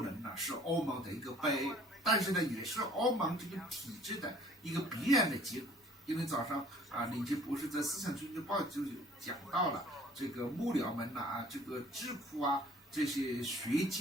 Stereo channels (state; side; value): normal; both; correlation 0.53